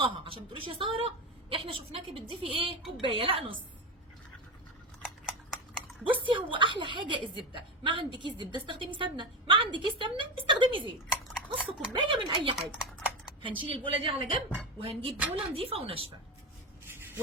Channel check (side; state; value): both; normal; correlation 0.19